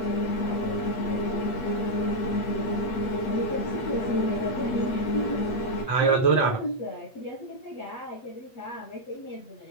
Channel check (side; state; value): right; late; 8.2 ms